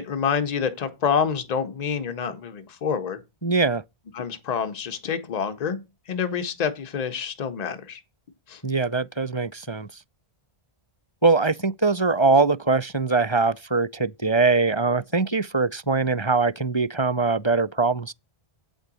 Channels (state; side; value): late; right; 1.3 ms